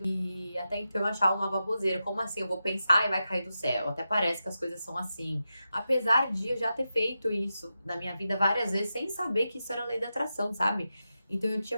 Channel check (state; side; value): inverted; both; correlation -0.90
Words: e até então eu achava uma baboseira. Como assim? Eu vou pensar e vai cair do céu. Até parece que as coisas são assim. Apesar de eu já ter feito isso na minha vida várias vezes, sem saber que isso era lei da atração, sabe? Então eu tinha